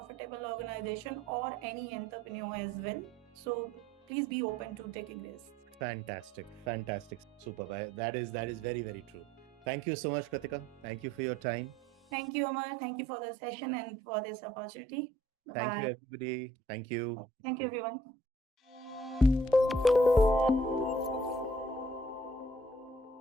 organization or any entrepreneur as well. So please be open to taking risks. Fantastic, fantastic, superb. That is very, very true. Thank you so much, Kratika. Thank you for your time. Thank you, Amar. Thank you for the session and for this opportunity. Bye Thank you, bye. everybody. Thank you. Thank you, everyone.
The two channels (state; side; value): normal; both; correlation 0.61